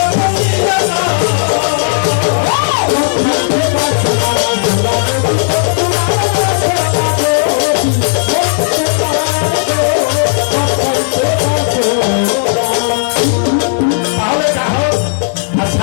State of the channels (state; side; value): silent; right; digital silence